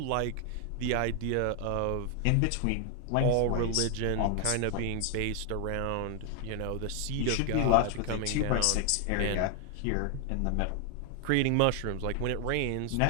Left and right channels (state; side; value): different; both; correlation 0.00